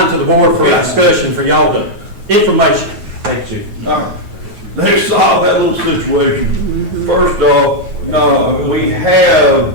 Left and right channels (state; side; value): late; left; 9.3 ms